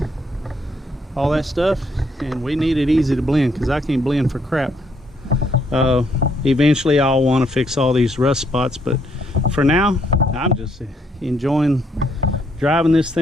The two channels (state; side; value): normal; both; correlation 0.71